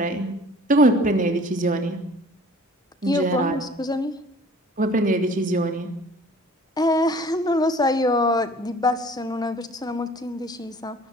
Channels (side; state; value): both; normal; correlation 0.50